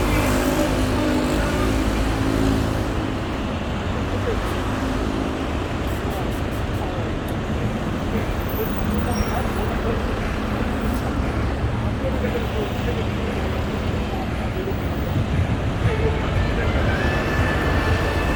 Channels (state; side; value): identical; both; correlation 1.00